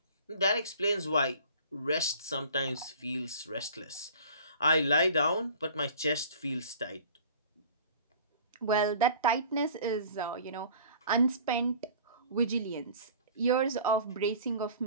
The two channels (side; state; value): both; inverted; correlation -0.45